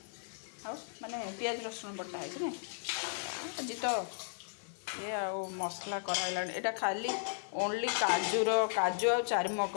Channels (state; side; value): silent; right; 54 dB below the other